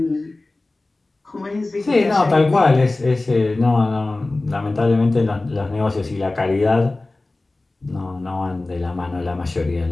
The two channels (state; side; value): quieter; right; 3.0 dB